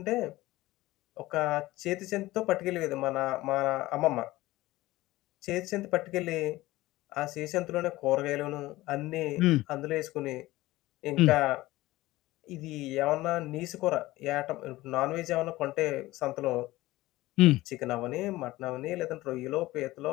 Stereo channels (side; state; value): right; quieter; 18.0 dB